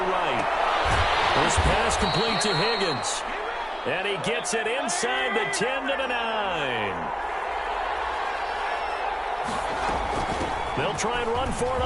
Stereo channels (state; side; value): identical; both; correlation 1.00